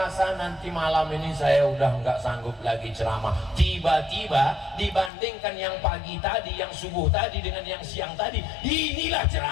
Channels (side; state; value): right; drops out; at 5.1 s